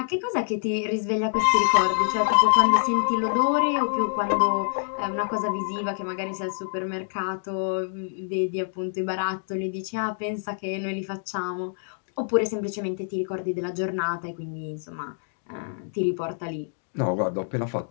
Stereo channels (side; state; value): right; silent; digital silence